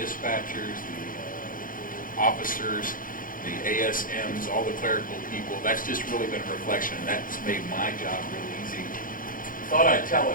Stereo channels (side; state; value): right; late; 0.40 ms